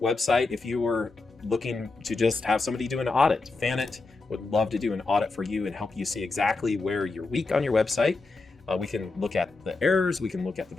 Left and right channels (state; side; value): quieter; right; 3.7 dB